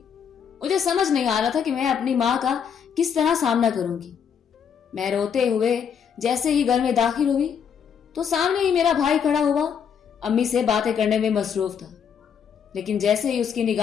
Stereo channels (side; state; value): right; quieter; 7.5 dB